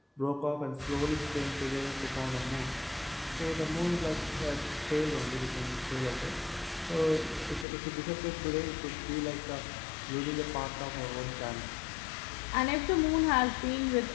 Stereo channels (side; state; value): right; drops out; at 7.7 s